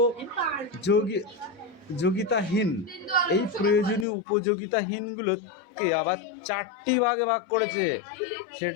উপযোগিতাহীন, এই প্রয়োজনীয় উপযোগিতাহীনগুলোকে আবার 4টি ভাগে ভাগ করেছে।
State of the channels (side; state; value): right; drops out; at 4.0 s